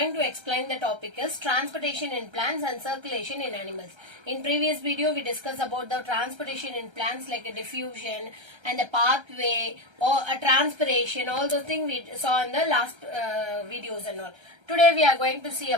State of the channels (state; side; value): late; left; 1.3 ms